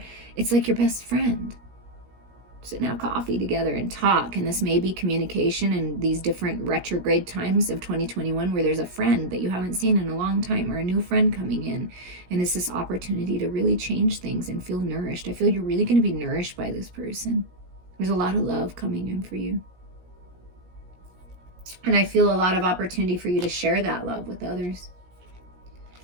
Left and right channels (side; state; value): left; late; 17 ms